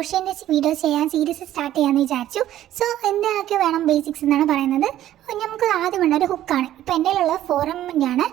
വീഡിയോ ചെയ്യാൻ സീരീസ് സ്റ്റാർട്ട് ചെയ്യാമെന്ന് വിചാരിച്ചു. എന്തൊക്കെ വേണം ബേസിക്സ് എന്നാണ് പറയുന്നത്. നമുക്ക് ആദ്യം വേണ്ട ഒരു ഹുക്കാണ്. ഇപ്പോൾ എൻ്റെ കയ്യിലുള്ള 4mm ആണ്.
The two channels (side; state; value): left; quieter; 12.8 dB